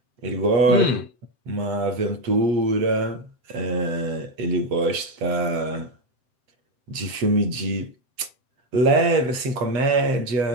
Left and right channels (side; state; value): left; late; 7.8 ms